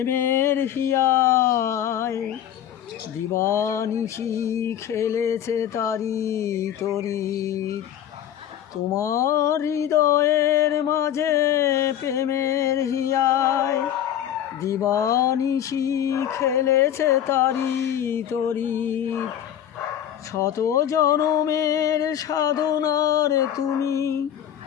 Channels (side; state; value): right; quieter; 10.4 dB